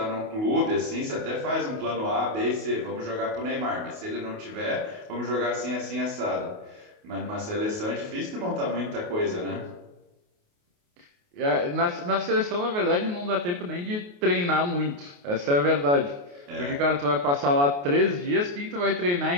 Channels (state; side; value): late; left; 28 ms